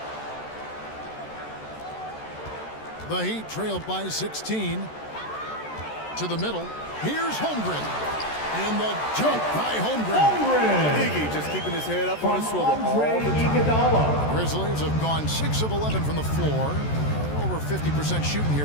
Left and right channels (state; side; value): late; right; 14 ms